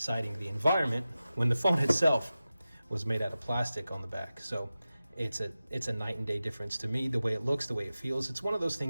the environment, when the phone itself was made out of plastic on the back. So it's a night and day difference to me, the way it looks, the way it feels. It's one of those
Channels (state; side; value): inverted; both; correlation -0.94